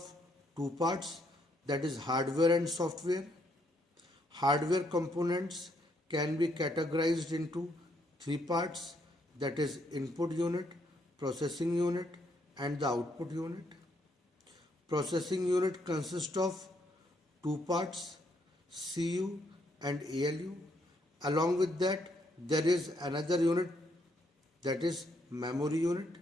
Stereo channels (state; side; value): normal; both; correlation 0.73